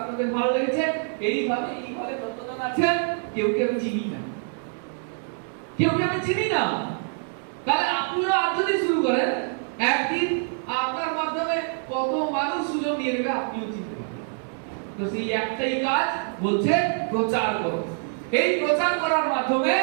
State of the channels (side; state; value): left; silent; 59 dB below the other